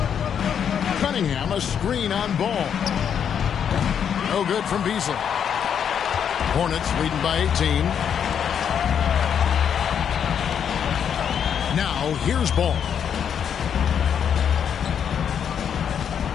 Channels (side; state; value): right; quieter; 8.1 dB